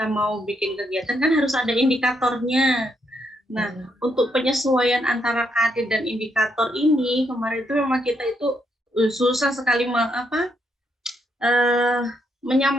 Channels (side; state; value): both; normal; correlation 0.77